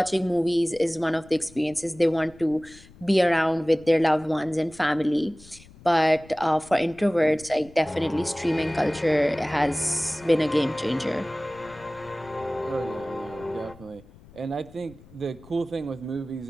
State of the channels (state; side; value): noise; left; rumble, 23 dB below the sound